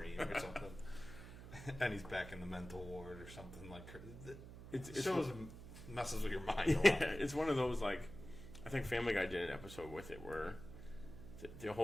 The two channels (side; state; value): right; noise; hum, 13 dB below the sound